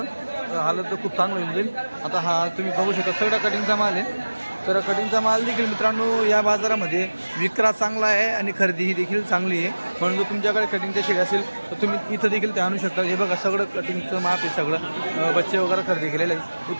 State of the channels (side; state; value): both; inverted; correlation -1.00